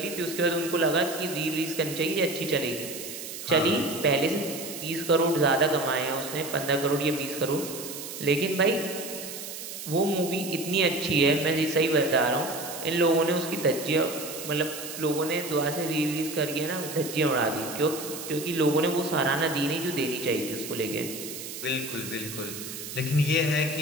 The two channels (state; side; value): noise; right; hiss, 9 dB below the sound